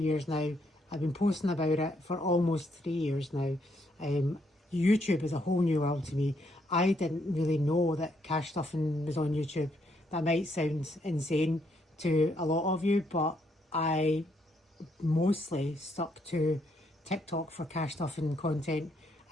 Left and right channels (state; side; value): normal; both; correlation 0.74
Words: now. I've been posting about it for almost 3 years now. YouTube is a whole new world to me. I didn't really know that cash stuffing was on YouTube. That might sound insane to a lot of you, but I mostly stuck to TikTok for cash stuffing content